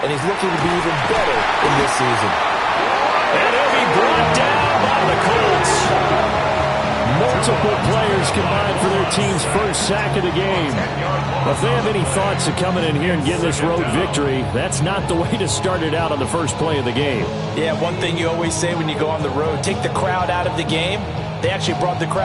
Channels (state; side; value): identical; both; correlation 1.00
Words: and he's looking to be even better in this season. And he'll be brought down by the Colts. Multiple players combined for their team's first sack of the game. If they have any thoughts of coming in here and getting this road victory, that's not the way to start it out on the first play of the game. Yeah, one thing you always say when you go on the road, take the crowd out of the game. They actually brought the